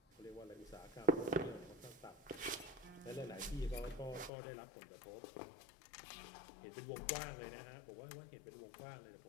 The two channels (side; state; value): right; drops out; at 4.3 s